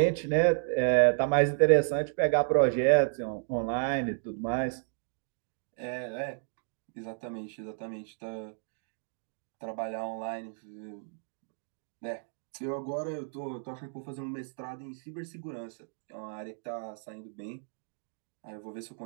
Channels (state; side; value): silent; left; digital silence